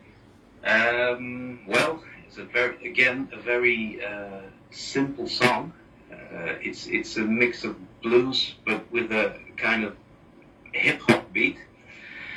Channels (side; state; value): both; identical; correlation 1.00